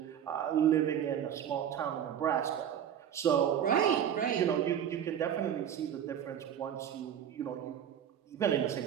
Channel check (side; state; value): left; quieter; 9.3 dB